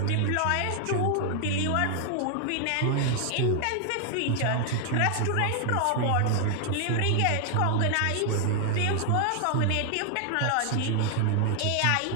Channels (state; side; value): different; both; correlation 0.00